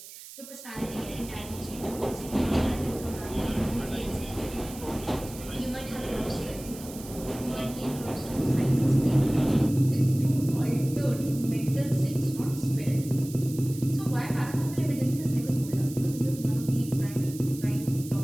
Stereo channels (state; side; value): noise; right; hiss, 15 dB below the sound